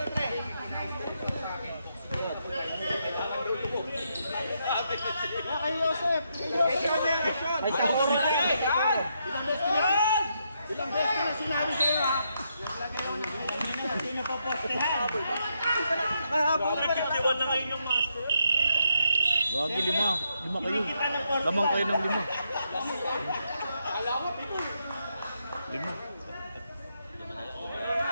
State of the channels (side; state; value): both; inverted; correlation -0.79